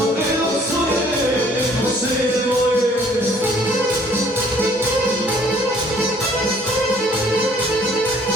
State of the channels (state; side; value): normal; both; correlation 0.58